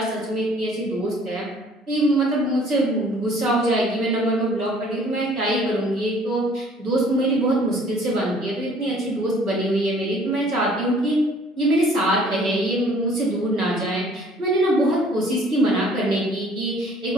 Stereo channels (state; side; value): normal; both; correlation 0.55